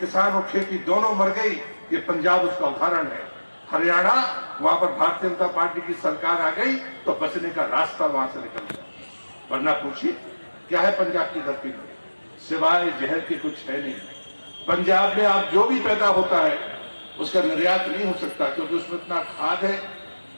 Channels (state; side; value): inverted; both; correlation -1.00